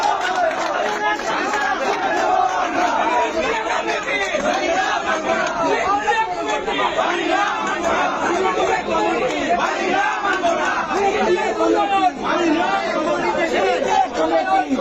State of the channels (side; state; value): both; identical; correlation 1.00